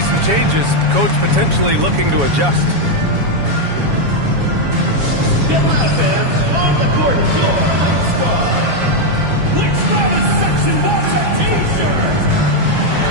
changes. Coach potentially looking to adjust.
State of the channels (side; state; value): left; late; 7.2 ms